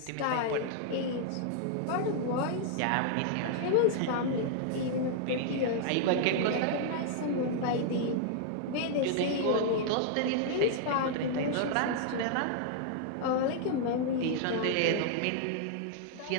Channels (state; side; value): different; both; correlation -0.01